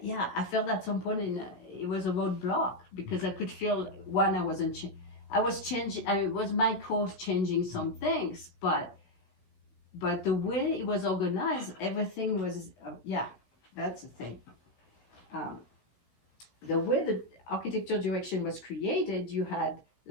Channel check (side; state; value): right; late; 16 ms